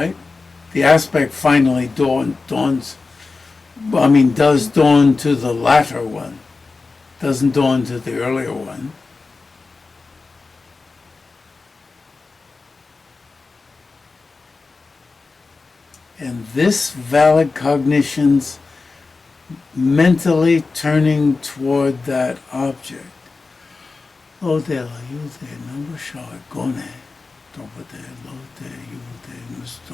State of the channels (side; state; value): right; quieter; 4.0 dB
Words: The aspect finally does dawn to the latter one, doesn't dawn to the earlier one. And this valid cognition's mentally turning toward that object. Lo de la yu de number shaw gone. Topa de lo de yu de